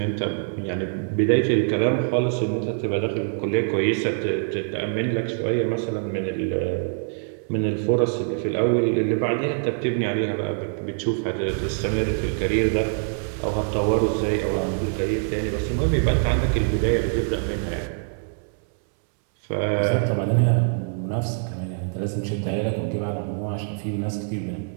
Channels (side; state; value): left; silent; 62 dB below the other